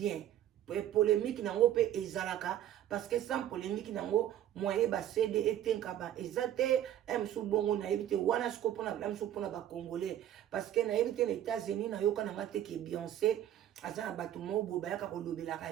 polémique nango pe ezalaka parce que sans polémique nango moyen ba CD etenka ba ezate msu bongo na ebite wana sikopo na msu pona ba congolais parce que na ebite les États-Unis na yoka na ngate ke Beyoncé aza na bato mobo bayaka kolobelaka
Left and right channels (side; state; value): left; quieter; 11.7 dB